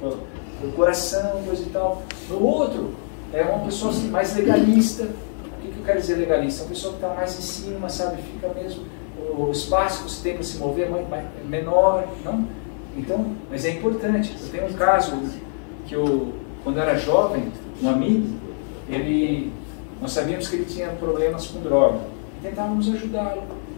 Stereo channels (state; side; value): silent; right; 57 dB below the other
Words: coração, coisa e tal. No outro, é uma pessoa assim, mais legalista. O que eu quero dizer legalista? Uma pessoa que está mais em cima, sabe? Fica mesmo, o espaço que você tem para se mover é menor, não? Então, mas é importante. Eu tenho um caso que quando eu era jovem, um amigo, nós sabíamos que ele tinha problemas com droga. Tentávamos ajudá-lo.